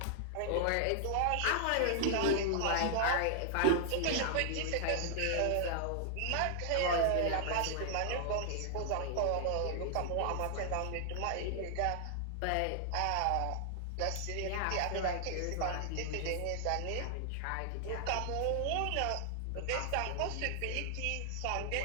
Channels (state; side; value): different; both; correlation 0.00